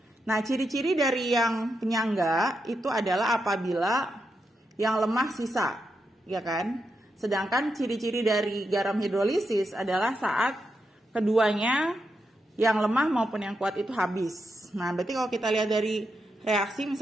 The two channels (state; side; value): normal; both; correlation 0.85